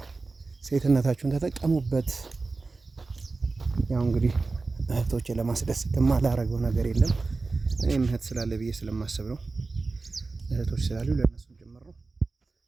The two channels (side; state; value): left; quieter; 3.8 dB